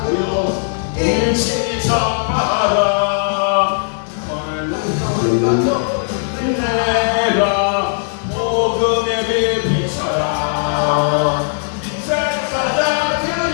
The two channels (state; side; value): silent; right; 66 dB below the other